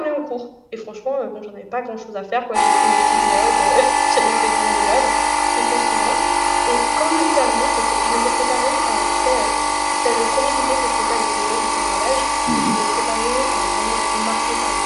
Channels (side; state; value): both; identical; correlation 1.00